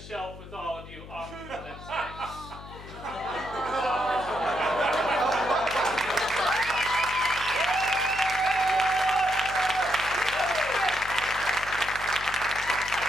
with all of you off to the next day.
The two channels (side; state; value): left; noise; hum, 15 dB below the sound